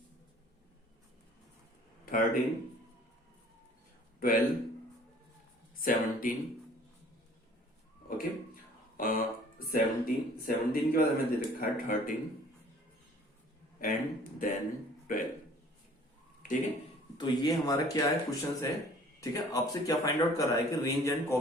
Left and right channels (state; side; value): normal; both; correlation 0.52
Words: 13 12 17, ओके। 17 के बाद हमें दे रखा है 13 एंड देन 12, ठीक है। तो ये हमारा क्या है, क्वेश्चन है, ठीक है। आपसे क्या फाइंड आउट कर रहा है कि range and